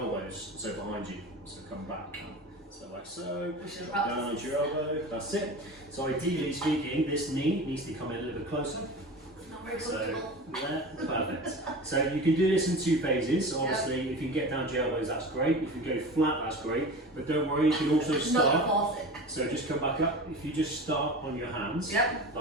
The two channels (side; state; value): both; normal; correlation 0.33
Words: So behind you. So come back. So like so. Down onto your elbow. That's it. So ideally speaking, this knee needs to come in a little bit closer. So, yeah, perfect. So you can do this in 2 phases. Obviously, if you can get down to your elbows, that's great. If you go flat, that's great. But don't worry, you can also start. So just come back up. If you just start on your hands,